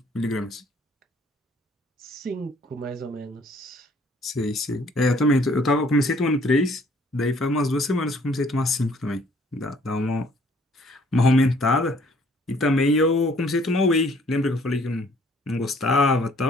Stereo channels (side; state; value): both; normal; correlation 0.60